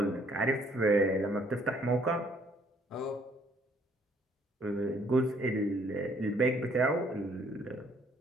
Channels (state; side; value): normal; both; correlation 0.64